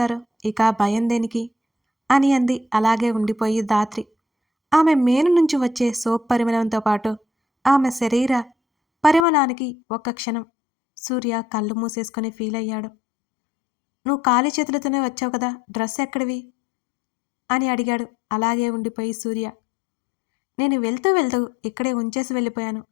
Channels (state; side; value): drops out; right; at 9.2 s